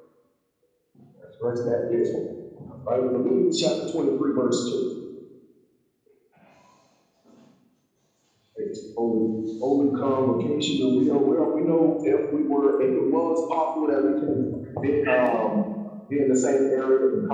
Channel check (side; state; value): both; identical; correlation 1.00